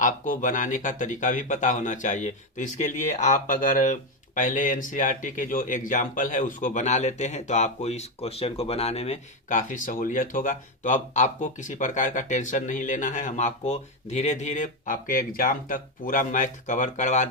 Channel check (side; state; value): both; normal; correlation 0.08